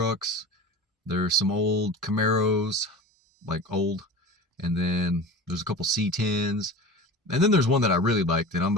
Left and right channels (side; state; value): both; normal; correlation 0.33